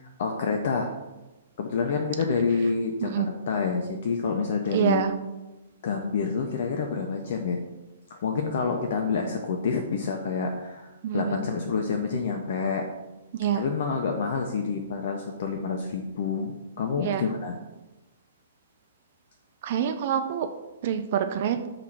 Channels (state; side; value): inverted; both; correlation -0.50